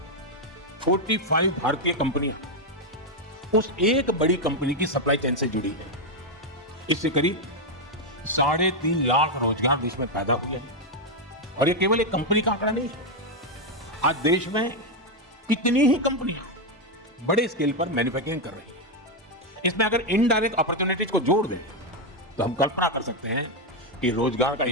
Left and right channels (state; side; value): normal; both; correlation 0.03